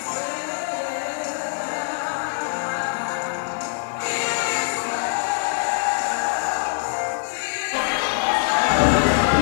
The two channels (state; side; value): silent; right; 63 dB below the other